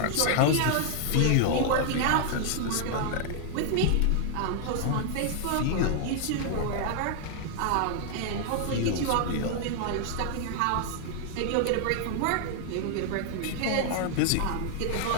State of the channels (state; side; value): different; both; correlation 0.00